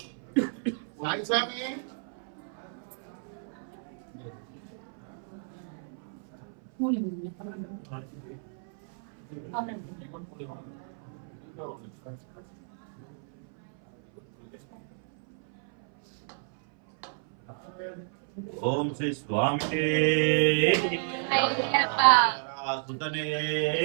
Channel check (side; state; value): left; silent; 56 dB below the other